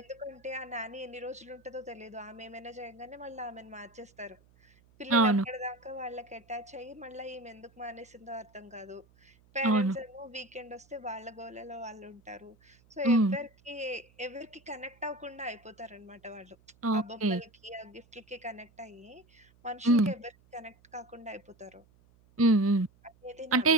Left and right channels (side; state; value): right; noise; hum, 29 dB below the sound